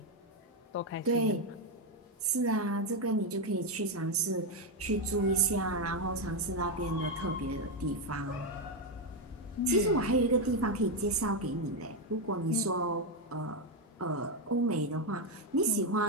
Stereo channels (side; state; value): both; normal; correlation 0.05